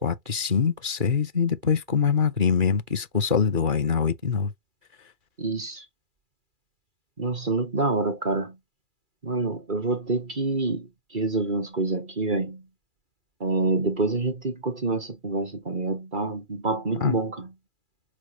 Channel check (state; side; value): late; left; 2.4 ms